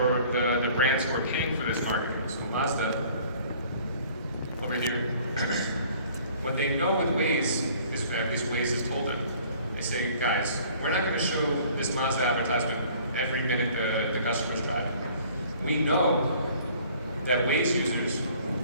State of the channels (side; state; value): both; inverted; correlation -0.54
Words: the brands who are paying for this marketing. So Mazda, over here. What they know with Waze, at least Waze has told them, they say, guys, we're not going to show this Mazda advertisement every minute the customer's driving. We know that Waze users,